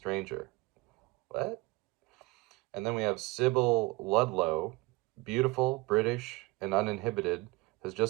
What? And then we have Sybil Ludlow, beautiful, British, and uninhibited, has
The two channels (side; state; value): left; quieter; 23.1 dB